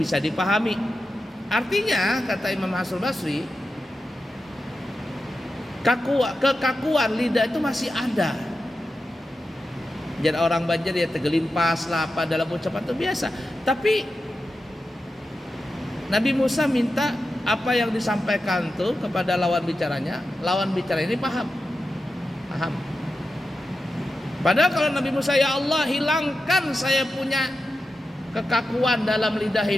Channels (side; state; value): both; normal; correlation 0.91